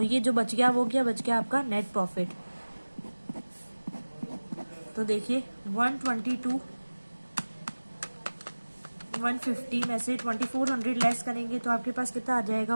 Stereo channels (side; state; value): both; inverted; correlation -1.00